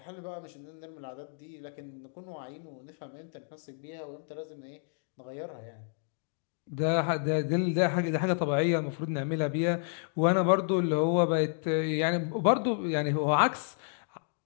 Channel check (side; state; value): right; silent; digital silence